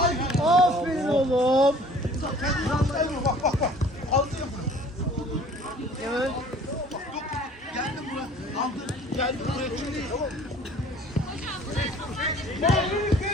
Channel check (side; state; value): both; normal; correlation 0.51